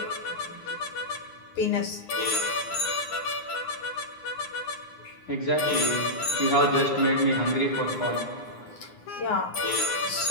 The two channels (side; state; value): right; late; 9.7 ms